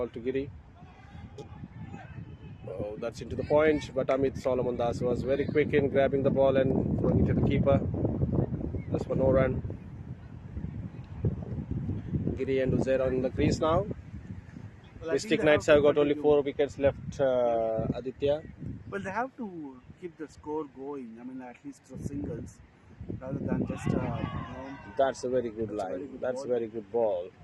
to Giri. Oh, that's into the point, but Amit Solomon Das was very quick in grabbing the ball and throwing it to the keeper. Just for no run. Giri and Uzair on the crease now. Well, I think Mystic they Knights have have to got only continue. 4 wickets left, Aditya. Well, they have to keep the score going. I mean, at least for singles, rather than just That's a very good that's a line. very good That's ball. a very good ball.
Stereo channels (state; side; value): identical; both; correlation 1.00